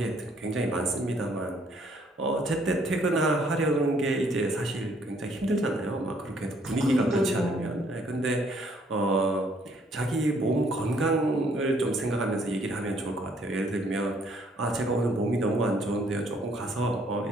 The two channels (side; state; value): both; normal; correlation 0.65